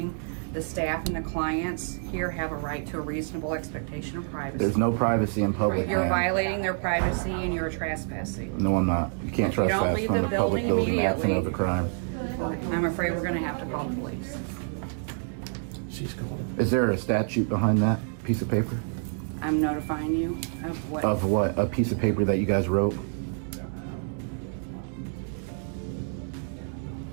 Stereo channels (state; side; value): silent; left; 59 dB below the other